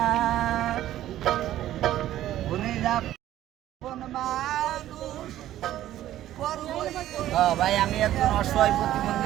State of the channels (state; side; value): quieter; left; 13.2 dB